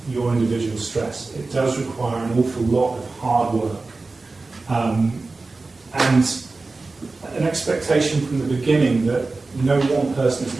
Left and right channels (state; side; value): quieter; left; 3.6 dB